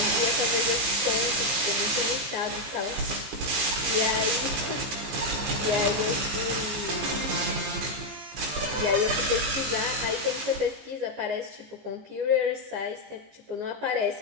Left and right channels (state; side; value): late; left; 15 ms